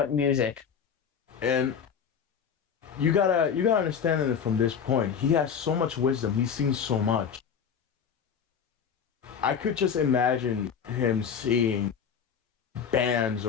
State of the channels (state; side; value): quieter; right; 7.2 dB